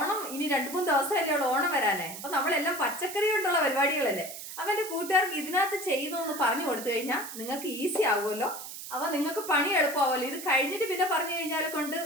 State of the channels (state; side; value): noise; right; hiss, 10 dB below the sound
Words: ഇനി 2-3 ദിവസമല്ലേ ഉള്ളൂ ഓണം വരാനേ. അപ്പം നമ്മളെല്ലാം പച്ചക്കറി കൊണ്ടുള്ള പരിപാടികളല്ലേ. അപ്പം എൻ്റെ കൂട്ടുകാർക്ക് ഇതിനകത്ത് ചെയ്യുന്നതെന്ന് പറഞ്ഞു കൊടുത്തു കഴിഞ്ഞാൽ നിങ്ങൾക്ക് ഈസി ആകുമല്ലോ. അപ്പം നിങ്ങൾക്ക് പണി എളുപ്പമാവുമല്ലോ. ഇത് കഴിഞ്ഞിട്ട് പിന്നെ പറഞ്ഞു കഴിഞ്ഞാൽ കൊണ്ട്